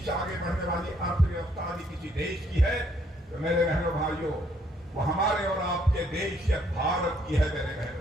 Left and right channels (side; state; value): both; normal; correlation 0.68